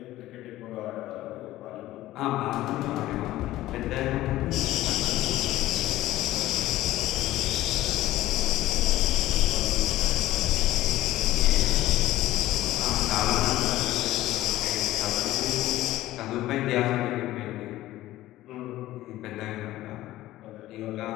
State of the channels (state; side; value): quieter; right; 15.6 dB